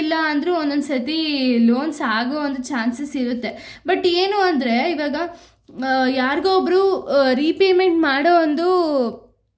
ಅಂದರೂ ಒಂದೊಂದು ಸತಿ ಲೋನ್ಸ್ ಆಗೋ ಒಂದು ಚಾನ್ಸಸ್ ಇರುತ್ತೆ. ಬಟ್ ಏನು ಅಂದರೆ, ಇವಾಗ ಯಾರಿಗೋ ಒಬ್ಬರು ರೀಪೇಮೆಂಟ್ ಮಾಡೋ ಒಂದು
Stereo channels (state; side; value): identical; both; correlation 1.00